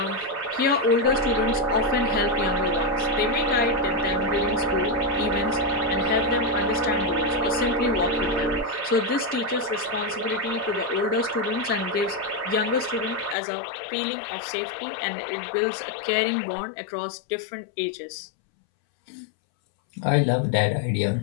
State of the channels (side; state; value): right; drops out; at 13.4 s